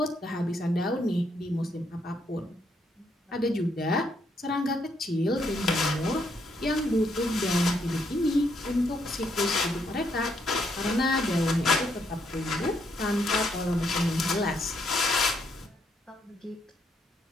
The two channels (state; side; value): normal; both; correlation 0.74